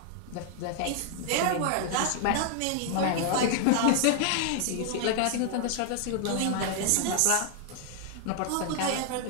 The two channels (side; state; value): both; different; correlation 0.00